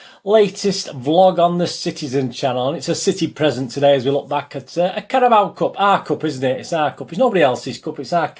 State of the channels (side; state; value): both; identical; correlation 1.00